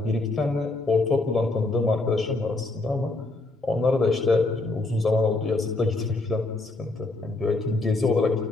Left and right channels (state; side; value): quieter; right; 3.1 dB